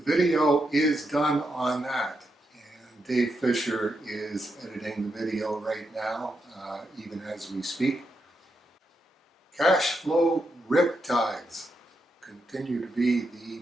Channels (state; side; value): normal; both; correlation 0.83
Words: video is done on that, and Dave Fisher is editing the video right now, even as we speak. Cashflow riptides continue to be